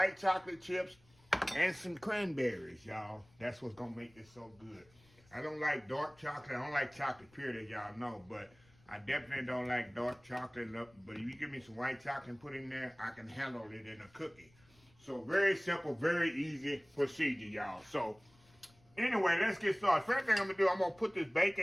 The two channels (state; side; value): noise; left; rumble, 29 dB below the sound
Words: chocolate chips, and some cranberries, y'all. That's what's going to make this so good. I don't like dark chocolate. I don't like chocolate period, as y'all know. But I definitely don't like dark chocolate. But if you give me some white chocolate and put in there, I can handle it in a cookie. So very simple, very easy procedure, y'all. So anyway, let's get started. First thing I'm going to do, I'm going to put this